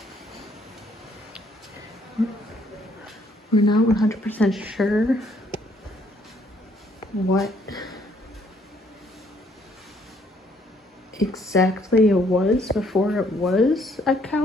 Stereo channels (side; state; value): both; normal; correlation 0.66